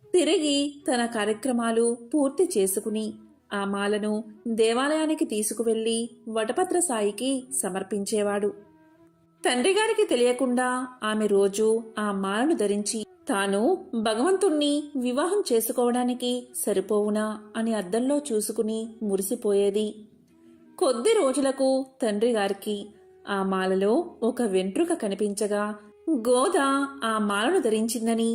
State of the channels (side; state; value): both; identical; correlation 1.00